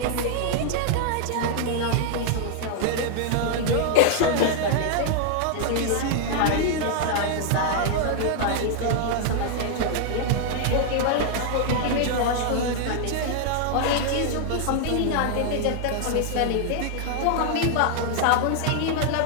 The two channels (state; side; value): different; both; correlation 0.00